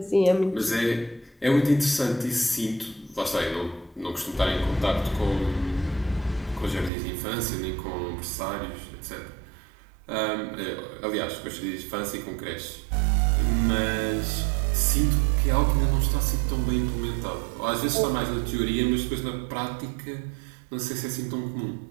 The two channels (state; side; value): drops out; left; at 6.9 s